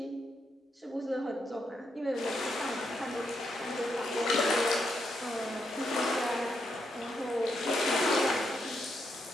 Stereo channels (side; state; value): both; normal; correlation 0.80